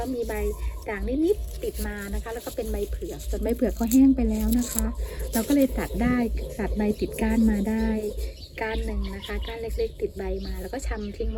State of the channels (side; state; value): both; identical; correlation 1.00